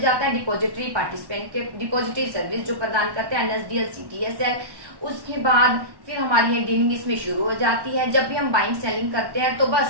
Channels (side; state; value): left; late; 1.1 ms